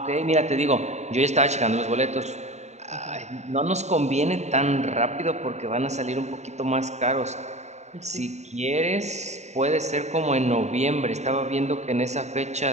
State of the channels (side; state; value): left; late; 0.33 ms